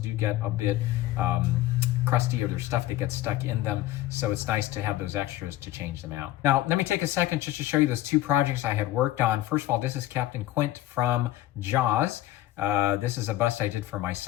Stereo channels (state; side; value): quieter; right; 14.8 dB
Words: do get a bit crusty, or there's stuff that gets stuck in them, so it's nice to have those extras to change them out. Now, let me take a second just to show you those 2 projects I had worked on. First of all, this is Captain Quint from Jaws. This is a bust I did for my